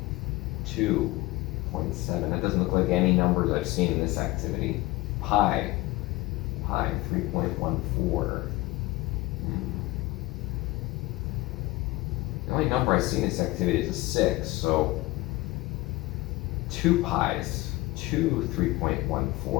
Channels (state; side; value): quieter; right; 20.6 dB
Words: 2.7. That doesn't look like any numbers I've seen in this activity. Pi 3.14. The only number I see in this activity is a 6, so 2 pi's, 2